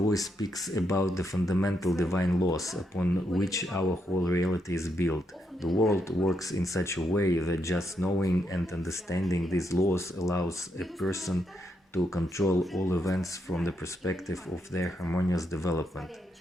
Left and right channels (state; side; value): normal; both; correlation 0.80